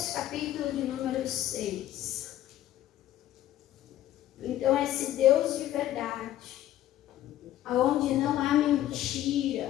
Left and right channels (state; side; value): quieter; right; 13.1 dB